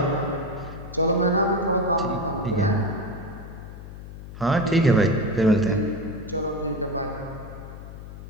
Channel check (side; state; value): left; noise; hum, 13 dB below the sound